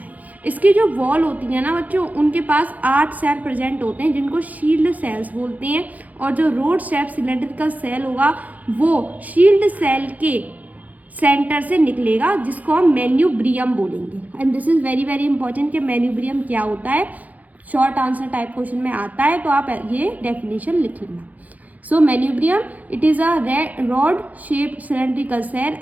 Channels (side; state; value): left; late; 0.077 ms